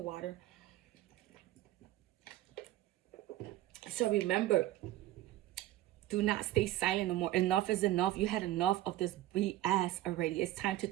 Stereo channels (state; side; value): quieter; left; 15.1 dB